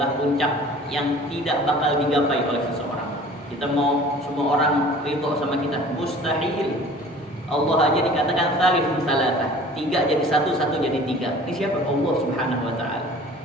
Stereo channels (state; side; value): normal; both; correlation 0.46